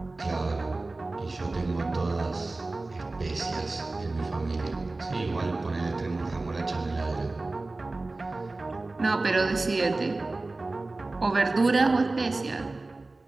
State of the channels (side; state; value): left; quieter; 3.2 dB